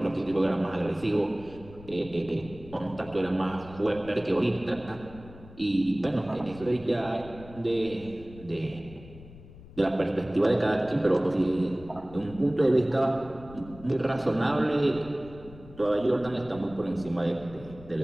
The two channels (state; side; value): noise; left; rumble, 18 dB below the sound